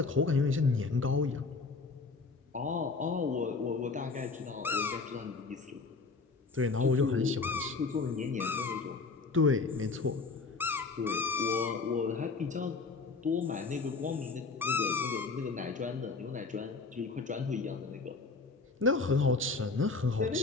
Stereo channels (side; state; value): right; quieter; 4.1 dB